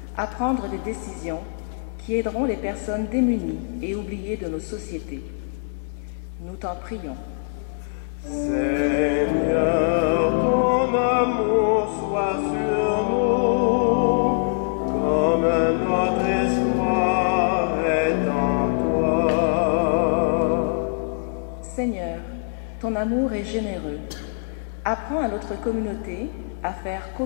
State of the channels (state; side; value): silent; right; 63 dB below the other